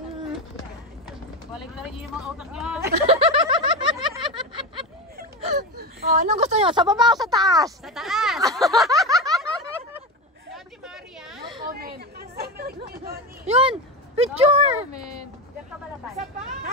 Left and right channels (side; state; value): both; normal; correlation 0.19